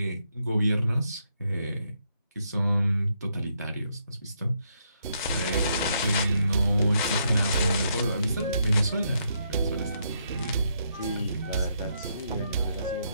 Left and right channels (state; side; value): inverted; both; correlation -0.76